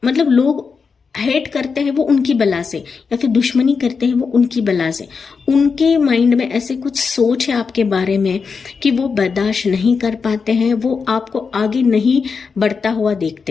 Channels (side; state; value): right; quieter; 5.3 dB